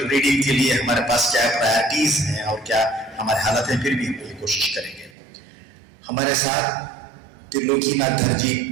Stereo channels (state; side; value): drops out; left; at 5.1 s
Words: रीडिंग के लिए हमारे पास क्या प्रायोरिटीज़ हैं और क्या हमारे हालत हैं, फिर भी हम ये कोशिश करेंगे। हमारे साथ त्रिलोकीनाथ धरजी